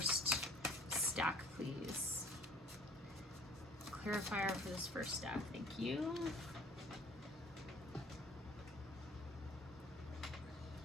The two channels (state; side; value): normal; both; correlation 0.51